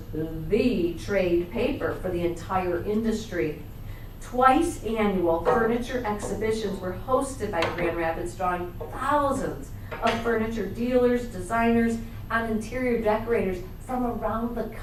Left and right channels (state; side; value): identical; both; correlation 1.00